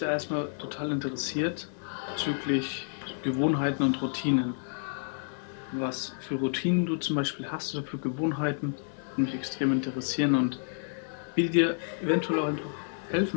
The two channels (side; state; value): right; silent; digital silence